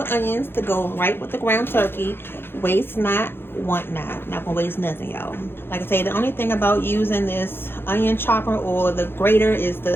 onions to go right with the ground turkey. Waste not, want not. Not gonna waste nothing, y'all. Like I say, the only thing about using this onion chopper or the grater is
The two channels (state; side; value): late; right; 0.11 ms